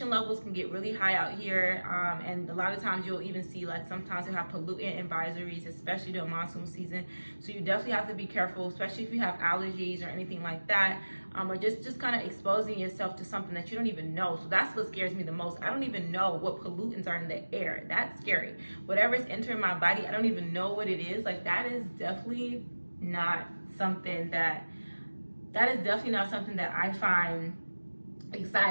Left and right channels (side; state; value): both; inverted; correlation -1.00